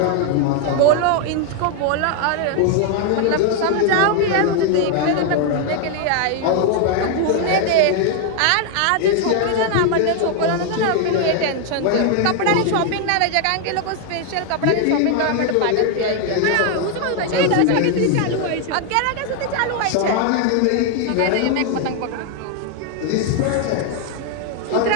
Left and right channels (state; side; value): different; both; correlation 0.00